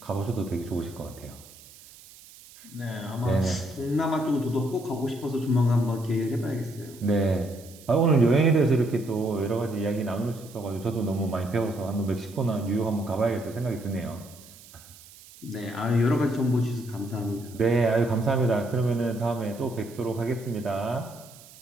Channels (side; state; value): right; noise; hiss, 21 dB below the sound